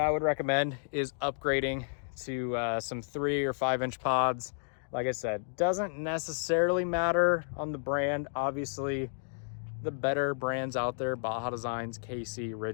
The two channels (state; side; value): silent; right; digital silence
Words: would recommend is upgrading to some 3 or 5 inch pods. Like I said, doesn't necessarily matter on the brand. Obviously, the better brands out there, Baja Designs, KC,